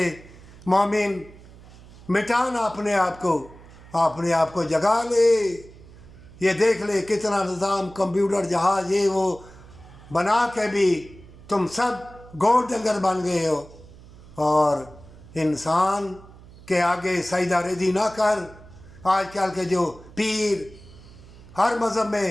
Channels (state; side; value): noise; right; hum, 21 dB below the sound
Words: मोमिन मिटाना अपने आप को जगा ले। ये देख ले कितना निज़ाम कंप्यूटर जहाज़ ये वो बना के भी तुम सब गोर डंगर बन गए हो। और इंसान के आगे सजदा रेजी ना कर। आजकल के जो पीर हर मज़हब में